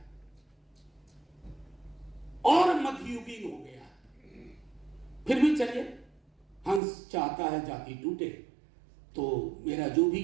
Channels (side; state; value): left; drops out; at 6.8 s